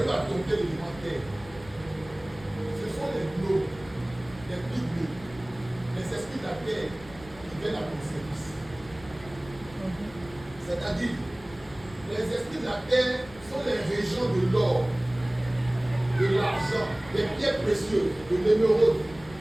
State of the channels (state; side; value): noise; left; rumble, 20 dB below the sound